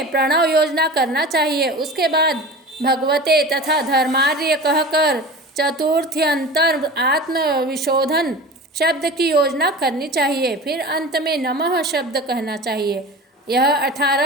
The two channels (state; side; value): normal; both; correlation 0.34